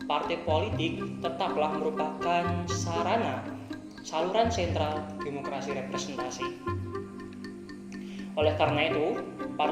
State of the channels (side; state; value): both; identical; correlation 1.00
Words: partai politik tetaplah merupakan saluran sentral demokrasi representasi. Oleh karena itu,